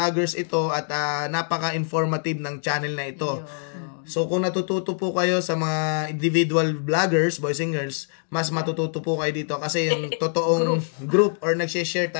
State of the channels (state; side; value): silent; right; 59 dB below the other